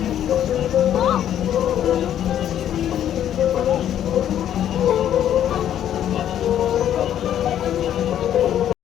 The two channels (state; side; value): quieter; right; 10.6 dB